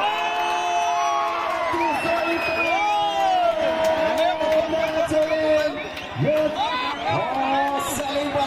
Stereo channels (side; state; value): both; identical; correlation 1.00